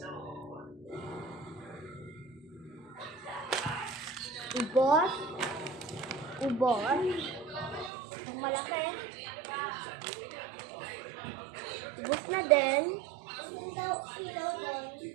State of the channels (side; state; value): left; drops out; at 7.9 s